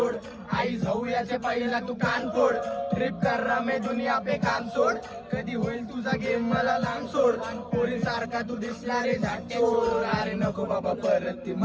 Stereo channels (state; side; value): identical; both; correlation 1.00